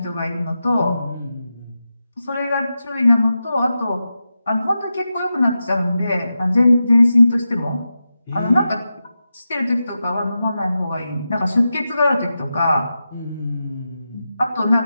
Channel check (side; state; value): both; inverted; correlation -0.90